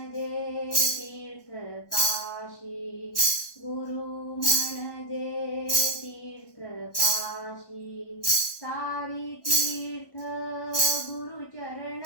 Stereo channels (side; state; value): right; late; 1.2 ms